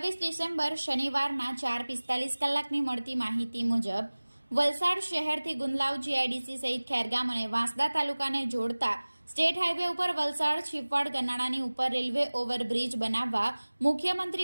ડિસેમ્બર શનિવારના 4:45 કલાકની મળતી માહિતી મુજબ વલસાડ શહેરથી ગુંદલાવ જીઆઈડીસી સહિત ખેરગામ અને વાંસદા તાલુકાને જોડતા સ્ટેટ હાઈવે ઉપર વલસાડ છીપવાડ ગરનાળાની ઉપર રેલવે ઓવરબ્રિજ બનાવવા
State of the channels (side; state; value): both; inverted; correlation -1.00